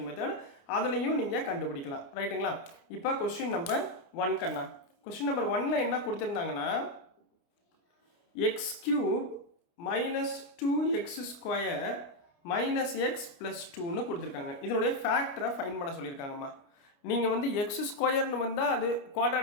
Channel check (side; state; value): right; late; 29 ms